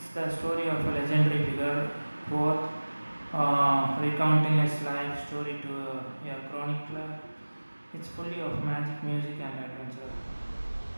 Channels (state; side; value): inverted; both; correlation -1.00